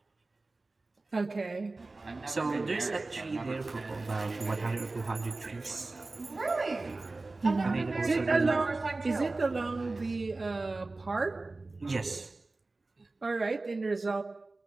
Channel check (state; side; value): quieter; left; 3.3 dB